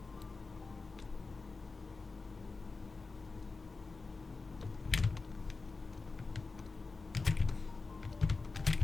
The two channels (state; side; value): quieter; right; 4.0 dB